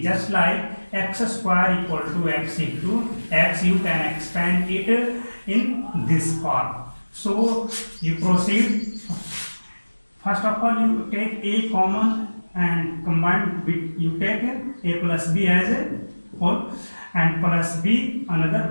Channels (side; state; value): both; inverted; correlation -1.00